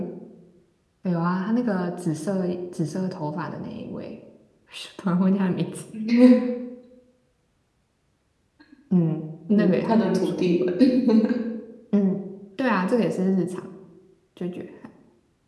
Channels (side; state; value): both; identical; correlation 1.00